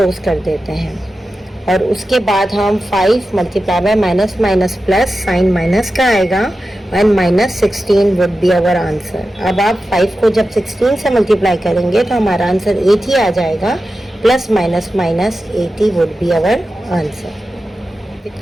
कर देते हैं। और उसके बाद हम 5 multiply by minus minus plus sign minus का आएगा and minus 16 would be our answer. अब आप 5 को जब 16 से मल्टीप्लाई करेंगे तो हमारा आंसर 80 आ जाएगा, plus minus minus 80 would be our answer.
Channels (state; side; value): normal; both; correlation 0.92